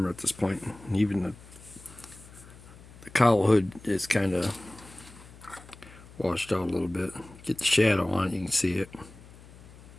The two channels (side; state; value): left; noise; hum, 20 dB below the sound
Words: at this point. Even the cowl hood is kind of washed out a little bit. Get the shadow on it, you can see it.